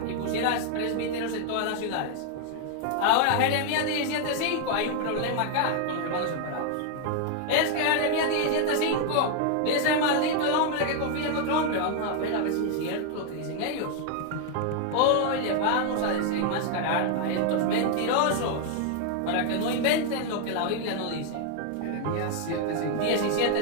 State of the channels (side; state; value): both; different; correlation 0.00